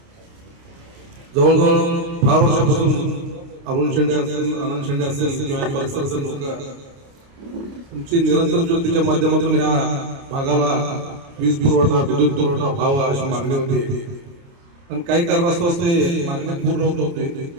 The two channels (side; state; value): left; late; 29 ms